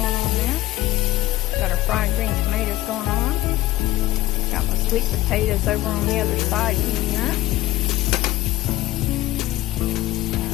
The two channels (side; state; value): right; quieter; 16.4 dB